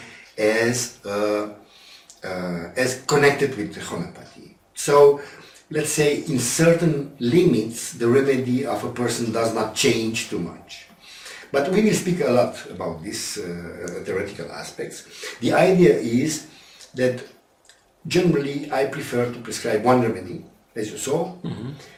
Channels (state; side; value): identical; both; correlation 1.00